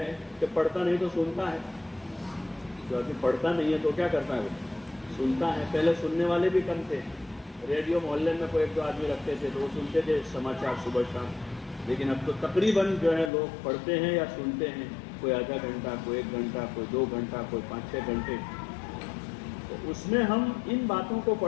کہ پڑھتا نہیں تو سنتا ہے، جو آدمی پڑھتا نہیں ہے تو کیا کرتا ہے، وہ سنتا ہے۔ پہلے سننے والے بھی کم تھے، ریڈیو محلے میں کوئی 1-2 آدمی رکھتے تھے تو وہ سنتے تھے سماچار صبح شام، لیکن اب تو تقریباً جو ہے لوگ پڑھتے ہیں یا سنتے ہیں، کوئی آدھا گھنٹہ، کوئی 1 گھنٹہ، کوئی 2 گھنٹہ، کوئی 5-6 گھنٹے۔ تو اس میں ہم ان باتوں کو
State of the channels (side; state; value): right; drops out; at 13.3 s